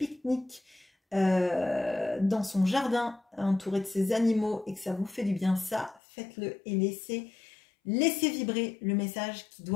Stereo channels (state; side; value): drops out; right; at 6.0 s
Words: dans son jardin, entouré de ses animaux, et que ça vous fait du bien, ça, faites-le et laissez vibrer le message qui